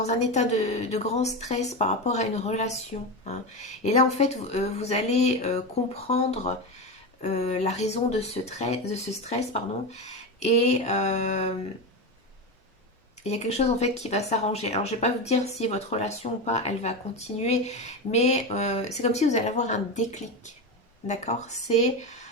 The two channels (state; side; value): normal; both; correlation 0.18